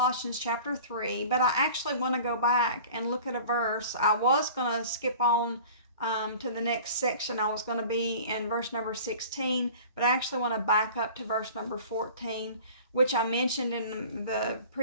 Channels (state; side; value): inverted; both; correlation -0.43